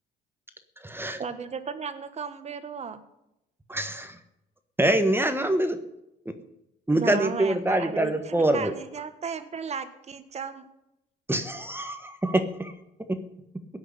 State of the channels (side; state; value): both; normal; correlation 0.68